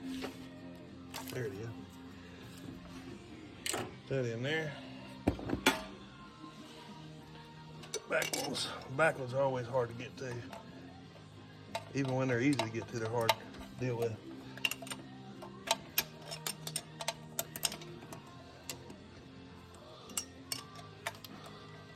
There it is. That in there. Back ones are always hard to get to. Even when they're easy to get to, they're hard to deal with.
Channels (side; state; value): both; identical; correlation 1.00